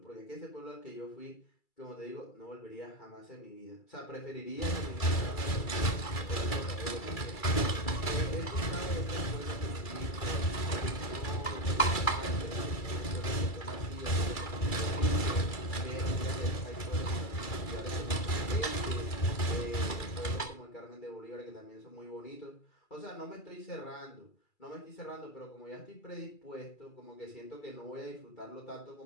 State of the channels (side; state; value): right; late; 2.3 ms